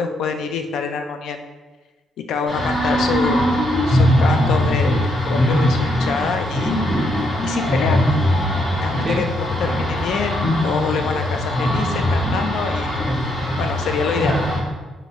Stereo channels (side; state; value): both; normal; correlation 0.75